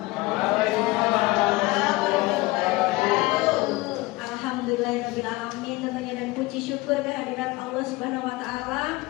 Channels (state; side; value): quieter; right; 21.0 dB